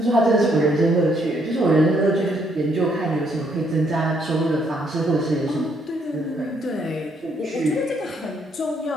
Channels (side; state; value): both; normal; correlation 0.71